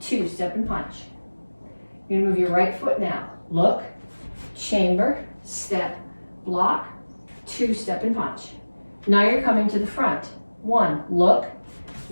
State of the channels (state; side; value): inverted; both; correlation -1.00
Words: step and punch. You're gonna move your right foot now. Look, chamber, step, block. 2, step and punch. Now you're coming to the front. 1, look,